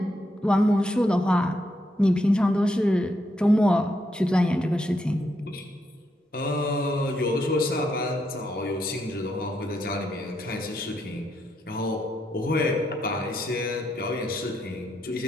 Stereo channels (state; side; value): normal; both; correlation 0.79